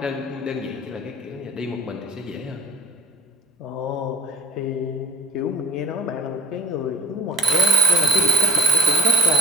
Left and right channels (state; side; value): normal; both; correlation 0.37